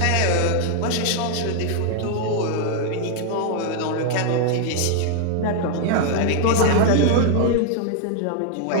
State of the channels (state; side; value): different; both; correlation 0.00